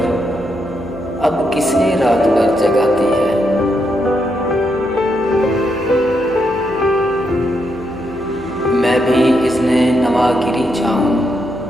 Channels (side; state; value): left; noise; hum, 19 dB below the sound